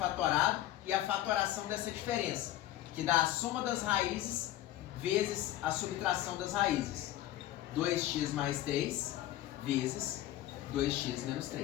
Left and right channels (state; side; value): quieter; right; 14.0 dB